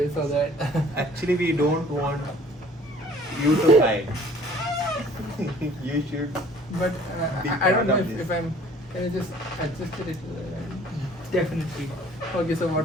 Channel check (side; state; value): both; normal; correlation 0.54